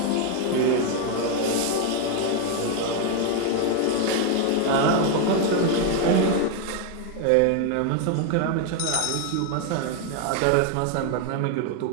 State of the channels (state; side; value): different; both; correlation 0.01